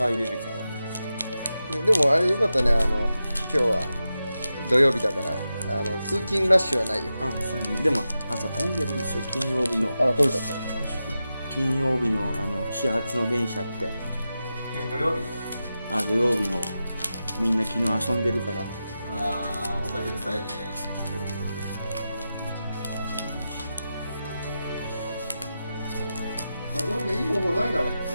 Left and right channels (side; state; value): both; inverted; correlation -0.91